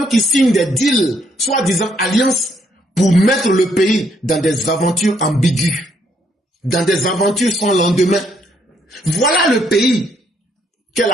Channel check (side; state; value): both; normal; correlation 0.71